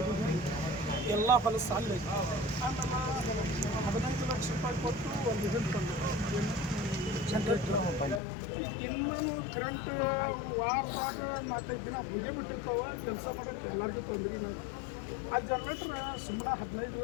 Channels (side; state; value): right; drops out; at 8.2 s